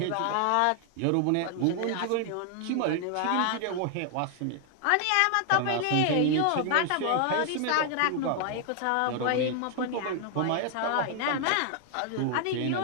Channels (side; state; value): both; different; correlation 0.00